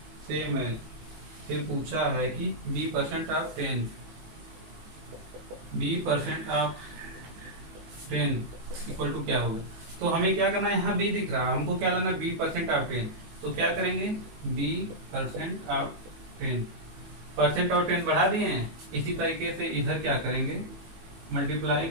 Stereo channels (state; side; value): late; left; 19 ms